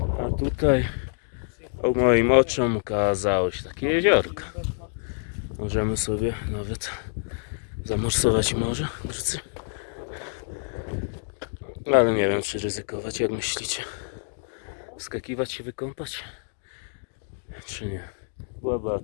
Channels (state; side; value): silent; right; digital silence